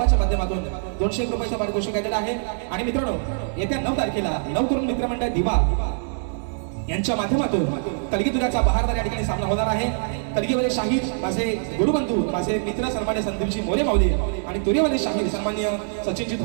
माध्यमातून 201 रुपयाचं पारितोषिक दिलं आहे. आणि मित्रांनो येत्या 9 तारखेला नवतरुण मित्रमंडळ दिवा यांच्या माध्यमातून कलगीतुऱ्याचा बहारदार या ठिकाणी सामना होणार आहे. कलगीवाले शाहीर माझे गुरुबंधू, माझे मित्र सन्मान्य संदीपजी मोरे माऊली आणि तुरेवाले शाहीर सन्मान्य सचिनजी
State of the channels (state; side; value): silent; left; digital silence